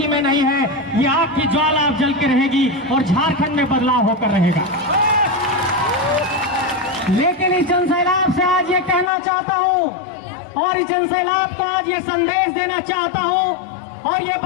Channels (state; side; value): drops out; right; at 9.1 s